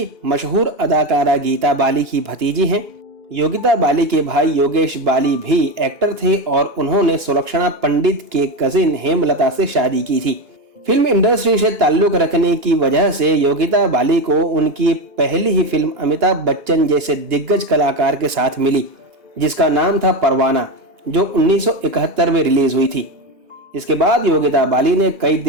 मशहूर अदाकारा गीता बाली की भतीजी हैं। योगिता बाली के भाई योगेश बाली भी एक्टर थे और उन्होंने सुलक्षणा पंडित के कजिन हेमलता से शादी की थी। फिल्म इंडस्ट्री से ताल्लुक रखने की वजह से योगिता बाली को उनकी पहली ही फिल्म अमिताभ बच्चन जैसे दिग्गज कलाकार के साथ मिली, जिसका नाम था परवाना, जो 1971 में रिलीज हुई थी। इसके बाद योगिता बाली ने कई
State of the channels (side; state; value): left; late; 2.9 ms